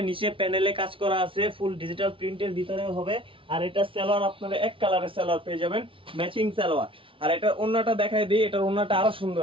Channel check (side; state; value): left; late; 0.25 ms